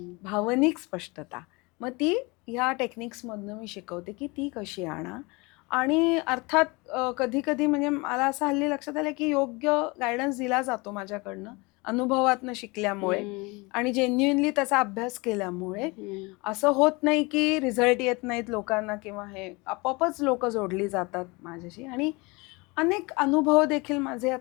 भावनिक स्पष्टता. मग ती ह्या टेक्निक्समधनं मी शिकवते की ती कशी आणा. आणि अर्थात कधी कधी म्हणजे मला असं हल्ली लक्षात आलं की योग्य गायडन्स दिला जातो माझ्याकडनं अनुभवातनं शिकल्यामुळे आणि जेन्युइनली त्याचा अभ्यास केल्यामुळे. असं होत नाही की रिझल्ट येत नाहीत लोकांना किंवा हे, आपोआपच लोक जोडली जातात माझ्याशी. आणि अनेक अनुभव देखील माझे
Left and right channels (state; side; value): quieter; right; 26.1 dB